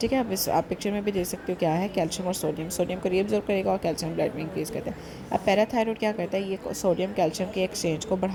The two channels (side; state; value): both; identical; correlation 1.00